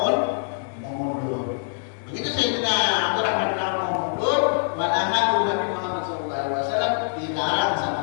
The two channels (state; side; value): silent; right; 58 dB below the other